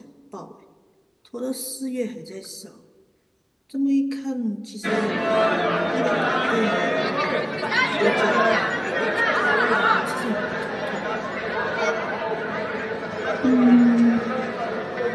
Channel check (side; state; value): both; identical; correlation 1.00